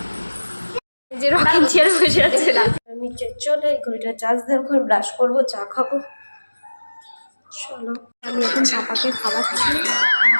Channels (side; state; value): both; inverted; correlation -1.00